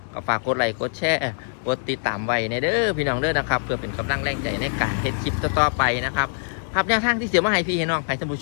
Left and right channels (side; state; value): right; silent; digital silence